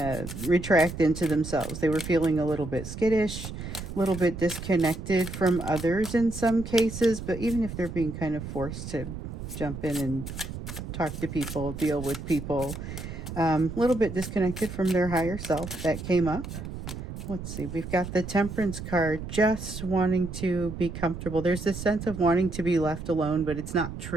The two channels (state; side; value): noise; right; rumble, 8 dB below the sound